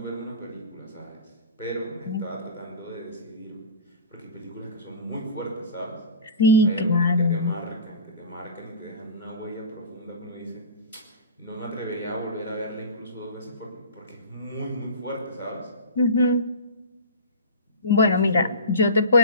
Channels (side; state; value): both; inverted; correlation -0.35